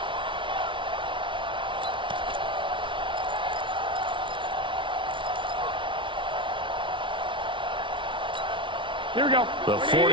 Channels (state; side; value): late; left; 0.24 ms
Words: Here we go. The